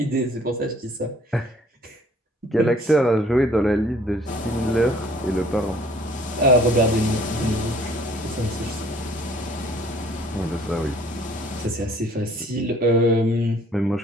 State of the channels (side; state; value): both; normal; correlation 0.56